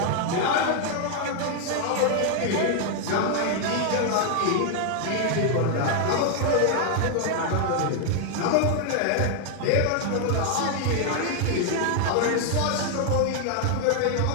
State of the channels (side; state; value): both; different; correlation 0.00